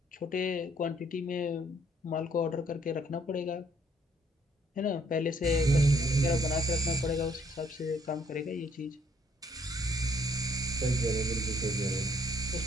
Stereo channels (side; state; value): both; normal; correlation 0.65